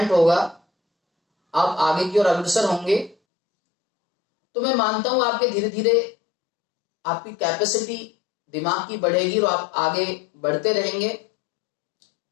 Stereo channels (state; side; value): drops out; right; at 3.2 s